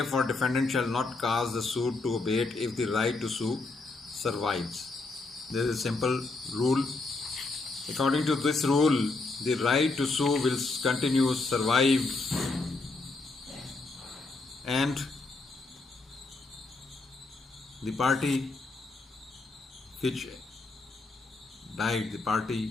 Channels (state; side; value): quieter; right; 3.5 dB